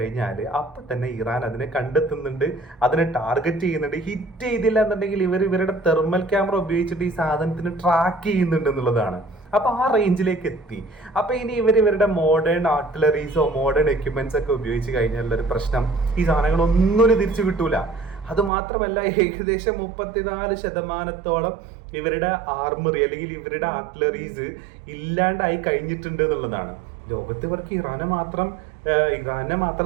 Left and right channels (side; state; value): left; drops out; at 18.5 s